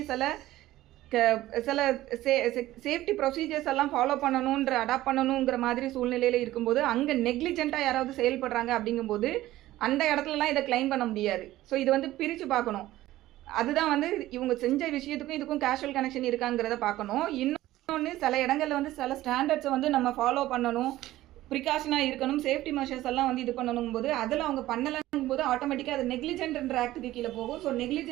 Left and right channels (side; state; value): left; quieter; 15.6 dB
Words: சில சேஃப்டி ப்ரொசீஜர்ஸ் எல்லாம் ஃபாலோ பண்ணணுன்ற அடாப்ட் பண்ணணுங்கிற மாதிரி சூழ்நிலையில் இருக்கும்போது அங்கே நெக்லிஜென்ட்டாக யாராவது செயல்படுறாங்க அப்படிங்கும்போது அந்த இடத்துலலாம் இதை கிளைம் பண்ண முடியாது. ஸோ இது வந்து பிரித்து பார்க்கணும். அதுதான் வந்து இவங்க செஞ்ச விஷயத்துக்கும் இதுக்கும் கேஷுவல் கனெக்ஷன் இருக்காங்கிறத பார்க்கணும். இன்னொன்று சில இடங்களில் வந்து சில ஸ்டாண்டர்ட்ஸை வந்து நம்ம ஃபாலோ பண்ணணும், ப்ரிகாஷனாக இருக்கணும், சேஃப்டி மெஷர்ஸ் எல்லாம் வந்து இது பண்ணணும் போது அதில் அவங்க பண்ணலங்கும் போது ஆட்டோமேட்டிக்காக அது நெக்லிஜென்ட்ன்ற ஆக்டுக்கு கீழே போகும். ஸோ